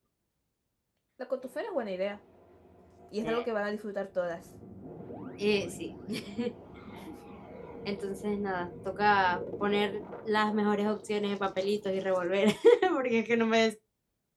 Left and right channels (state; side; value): identical; both; correlation 1.00